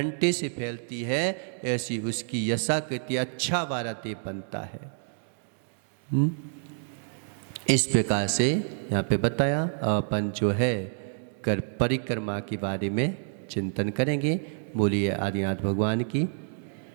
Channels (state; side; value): silent; left; digital silence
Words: से फैलती है, ऐसी उसकी यशा कीर्ति अच्छा वाला देव बनता है। इस प्रकार से यहाँ पे बताया अपन जो है कर परिक्रमा के बारे में चिंतन करेंगे। बोलिए आदिनाथ भगवान की।